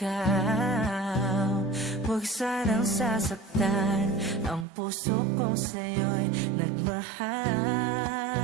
Huwag sanang sasaktan ang puso kong sa'yo'y nagmahal.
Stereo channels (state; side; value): drops out; left; at 4.7 s